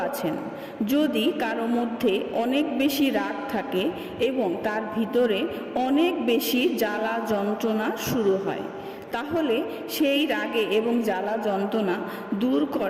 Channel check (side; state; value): both; identical; correlation 1.00